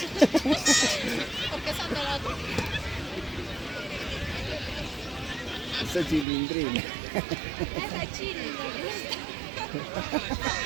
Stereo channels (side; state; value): left; drops out; at 6.2 s